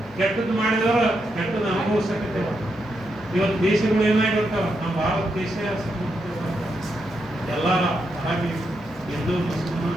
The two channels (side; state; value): both; normal; correlation 0.83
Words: ಕೆಟ್ಟದ್ದು ಮಾಡಿದವರು ಕೆಟ್ಟದ್ದು ಅನುಭವಿಸಕತ್ತೇವ. ಇವತ್ತು ದೇಶಗಳು ಏನಾಗಿರ್ತಾವ, ನಮ್ಮ ಭಾರತ ದೇಶ ಎಲ್ಲ ಹಾಗೆ ಹಿಂದೂ ಮುಸ್ಲಿಮ್